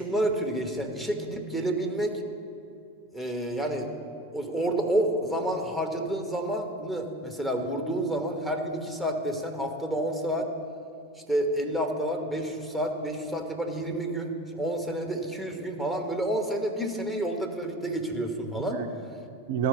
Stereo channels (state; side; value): normal; both; correlation 0.39